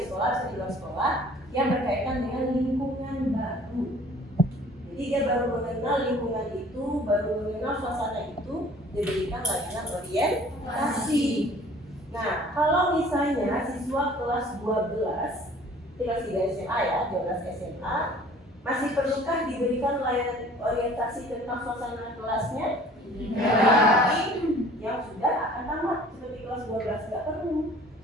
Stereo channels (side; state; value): both; normal; correlation 0.51